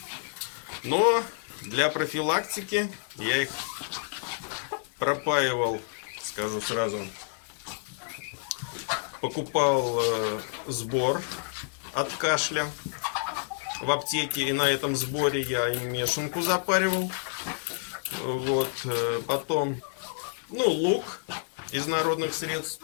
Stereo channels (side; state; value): right; silent; digital silence